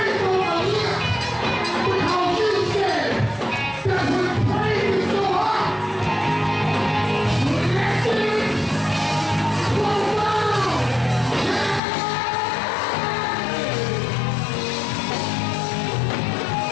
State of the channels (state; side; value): drops out; right; at 11.8 s